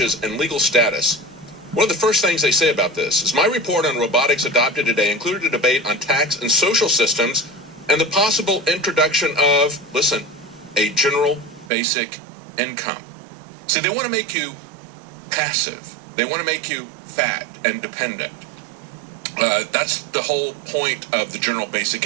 and legal status, one of the first things they say about this is my report on robotics adopted today included a debate on tax and social systems and the possible introduction of, listen, a general basic income. See, they want to make you passive. They want to make you fat and dependent. That's the whole point of the general basic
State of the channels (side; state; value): left; drops out; at 11.7 s